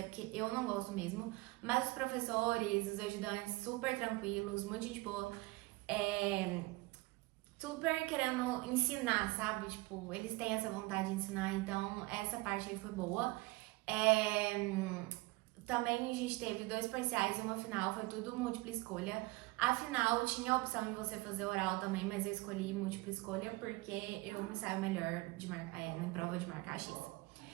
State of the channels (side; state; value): left; quieter; 22.2 dB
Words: porque eu não gosto mesmo. Mas os professores, os ajudantes, super tranquilos, muito gente boa, super querendo ensinar, sabe? Tipo, eles têm essa vontade de ensinar, então essa parte aí foi boa. Também a gente teve 2 parciais e uma final, foi tudo múltipla escolha. A final tinha a opção de você fazer oral também, mas eu escolhi múltipla escolha porque eu me saio melhor de em prova de marcar X.